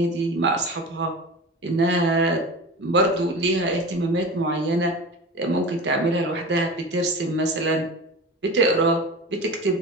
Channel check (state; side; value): normal; both; correlation 0.32